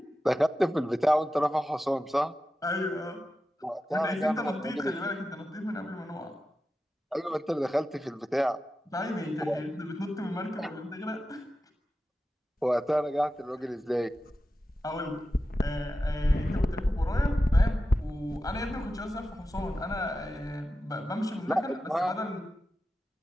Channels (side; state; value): both; normal; correlation 0.92